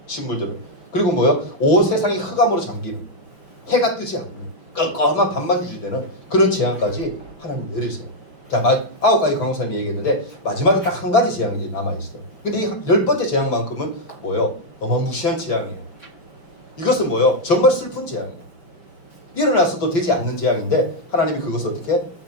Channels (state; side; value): late; right; 5.9 ms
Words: 식물들을. 그리고 뭐요? 온 세상이 흑암으로 잠기는, 해가 뜨지 않는 껌껌한 밤만 유지되는 그런 재앙까지 하나님 내리세요. 자, 9가지 강호사님이 얘기했는데 마지막에 딱 한 가지 재앙이 남아있어. 근데 이 10번째 재앙만큼은 뭐요? 어마무시한 재앙이에요. 이것은 뭐요? 정말 슬픈 재앙이에요. 일어나서도 되지 않는 재앙인데 하나님이 그것을 어떻게